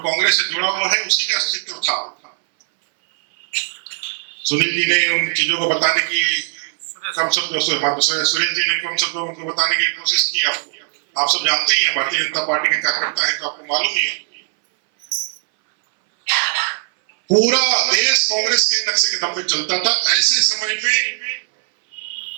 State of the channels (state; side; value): silent; left; 61 dB below the other